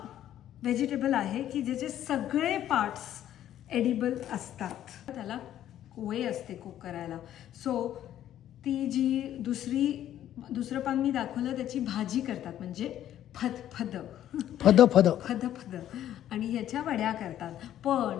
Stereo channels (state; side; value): quieter; right; 11.7 dB